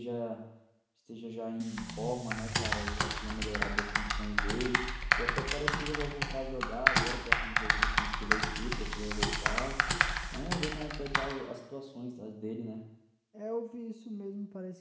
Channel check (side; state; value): both; identical; correlation 1.00